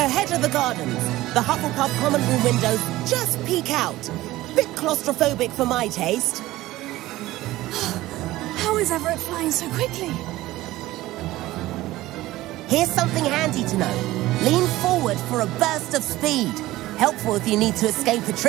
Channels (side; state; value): left; quieter; 17.0 dB